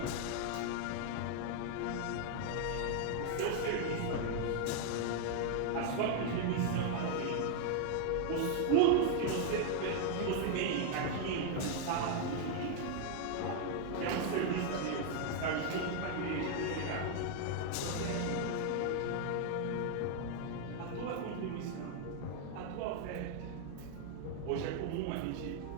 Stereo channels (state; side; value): different; both; correlation 0.00